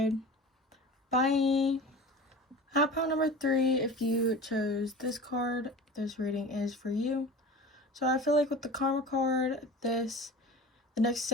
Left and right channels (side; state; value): both; normal; correlation 0.36